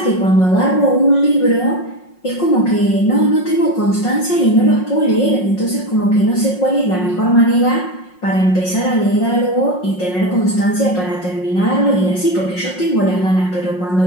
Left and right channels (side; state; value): right; late; 5.5 ms